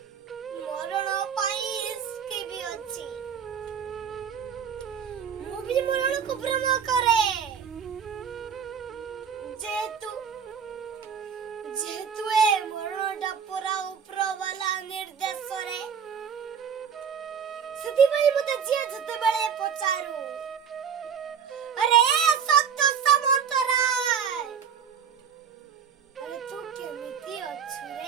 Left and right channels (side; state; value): left; quieter; 7.3 dB